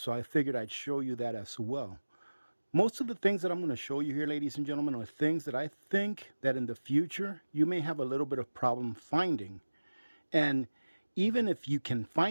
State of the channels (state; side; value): inverted; both; correlation -1.00